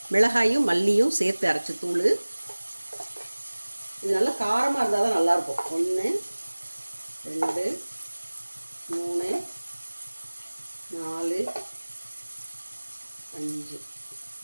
மிளகாயும் மல்லியும் சேர்த்து அரைச்ச தூள். இது நல்லா காரமாக இருந்தால் தான் நல்லாயிருக்கும். 1 2 3 4 5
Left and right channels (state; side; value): inverted; both; correlation -1.00